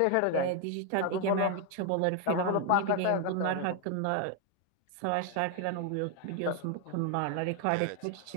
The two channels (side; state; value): both; different; correlation 0.00